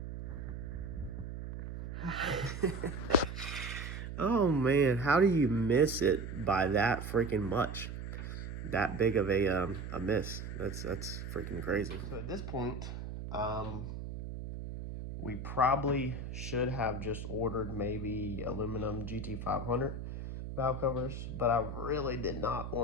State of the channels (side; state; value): right; noise; hum, 7 dB below the sound